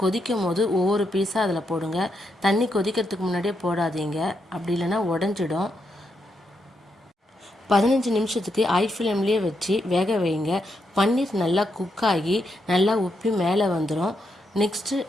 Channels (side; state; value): both; normal; correlation 0.81